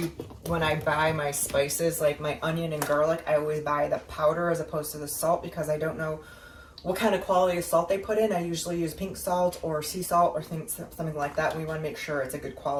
when I buy my spices, like my onion and garlic, I always buy the powder as opposed to the salt, because I don't know what kind of quality of salt they put in. I usually use pink salt or sea salt or something like that. We want to make sure it's a good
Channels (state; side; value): identical; both; correlation 1.00